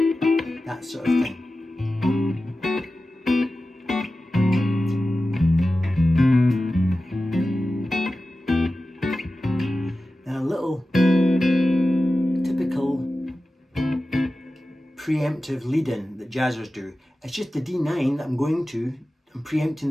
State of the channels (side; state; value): both; normal; correlation 0.94